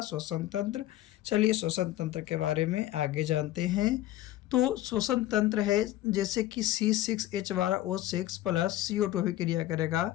श्वसन तंत्र? चलिए श्वसन तंत्र के बारे में आगे जानते हैं। तो श्वसन तंत्र है जैसे कि C6H12O6 प्लस CO2 भी क्रिया करेगा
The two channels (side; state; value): right; quieter; 14.5 dB